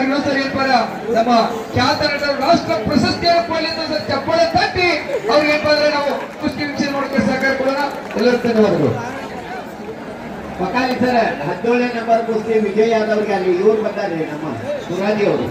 ಇನ್ನೊಂದ್ಸರಿ ಏನಪ್ಪ ನಮ್ಮ ಖ್ಯಾತ ನಟರು ರಾಷ್ಟ್ರ ಪ್ರಶಸ್ತಿಯನ್ನು ಕೊಡ್ಲಿ ಅಂತ ಸರ್ ಚಪ್ಪಾಳೆ ತಟ್ಟಿ ಅವ್ರಿಗೆ ಏನಪ್ಪ ಅಂದ್ರೆ ನಾವು ಕುಸ್ತಿ ವೀಕ್ಷಣೆ ಮಾಡೋಕೆ ಸಹಕಾರ ಕೊಡೋಣ. ಎಲ್ಲರೂ ಧನ್ಯವಾದಗಳು. ಪಕಾಲಿ ಸರ್ 17ನೇ ನಂಬರ್ ಕುಸ್ತಿ ವಿಜಯ್ ಯಾದವ್ರಿಗೆ ಅಲ್ಲಿ ಇವ್ರು ಬಂದಾರೆ, ನಮ್ಮ ತುರಾದಿ ಅವರು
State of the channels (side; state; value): both; identical; correlation 1.00